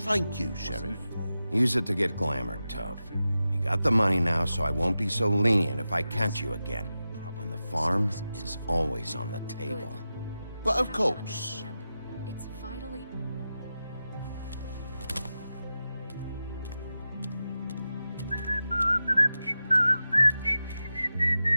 you, Sheriff. Use it to get glamored, Toad. You got the money now, so I won't be so lenient if I catch you again. And the farm is always on the table. But of course. It's vitally...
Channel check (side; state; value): both; inverted; correlation -0.92